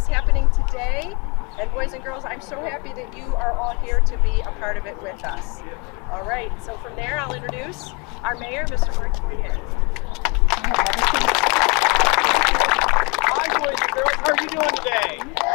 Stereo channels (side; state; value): right; quieter; 30.1 dB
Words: happening today. And boys and girls, I'm so happy that you are all here to be a part of it with us. All right, so from there, I'll introduce our mayor, Mr. Mark Fournier. Hi, boys and girls. How are you doing today? Good.